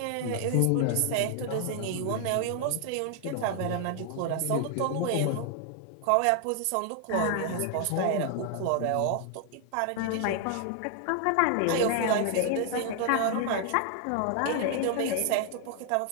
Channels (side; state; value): both; different; correlation 0.00